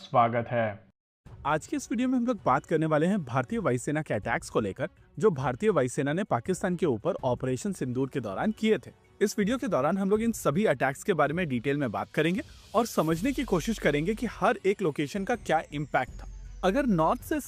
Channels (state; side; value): identical; both; correlation 1.00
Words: है। आज के इस वीडियो में हम लोग बात करने वाले हैं भारतीय वायुसेना के अटैक्स को लेकर, जो भारतीय वायुसेना ने पाकिस्तान के ऊपर ऑपरेशन सिंदूर के दौरान किए थे। इस वीडियो के दौरान हम लोग इन सभी अटैक्स के बारे में डिटेल में बात करेंगे और समझने की कोशिश करेंगे कि हर एक लोकेशन का क्या इम्पैक्ट था। अगर नॉर्थ से